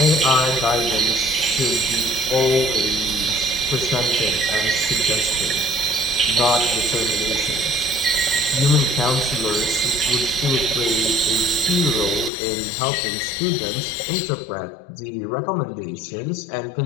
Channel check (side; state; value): right; drops out; at 12.3 s